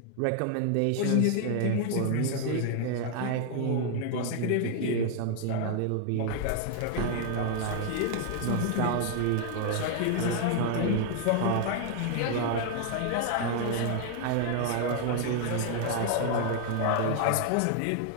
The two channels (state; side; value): different; both; correlation 0.00